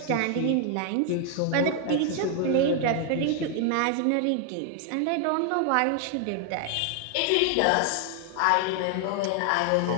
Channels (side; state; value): both; different; correlation 0.00